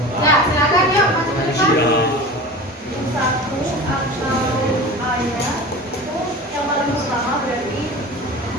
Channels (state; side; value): normal; both; correlation 0.34